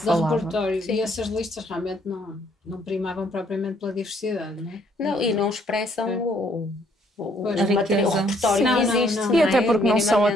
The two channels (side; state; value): both; normal; correlation 0.66